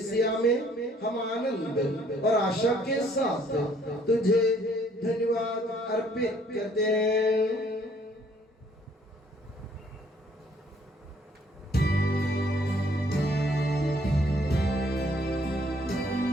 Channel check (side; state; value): both; normal; correlation 0.63